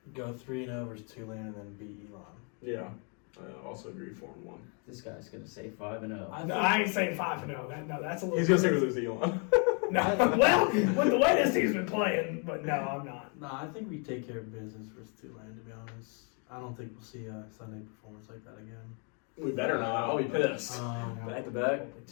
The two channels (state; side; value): quieter; right; 38.0 dB